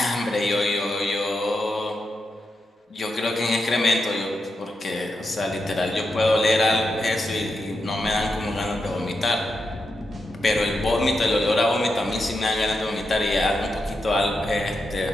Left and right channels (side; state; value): both; normal; correlation 0.86